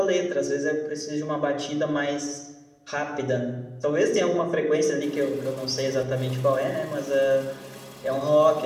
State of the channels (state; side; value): identical; both; correlation 1.00